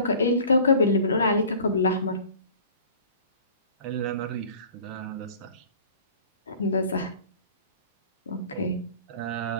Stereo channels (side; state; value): both; inverted; correlation -0.46